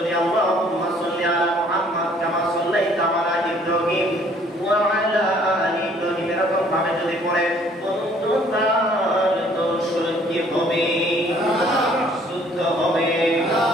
আল্লাহুম্মা সাল্লি আলা মুহাম্মাদ কামা সাল্লাইতা আলা ইব্রাহিম ওয়া আলা আলি ইব্রাহিম এরকম ভাবে যদি পড়ে, বন্ধু তার দরুদ শরীফ কি হবে? শুদ্ধ হবে,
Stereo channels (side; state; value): both; normal; correlation 0.59